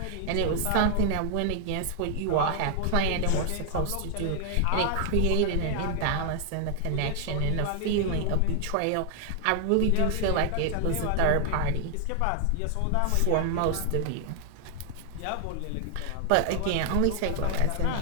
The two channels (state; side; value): different; both; correlation 0.00